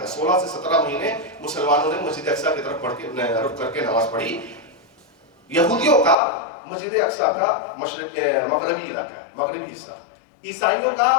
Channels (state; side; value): drops out; right; at 6.2 s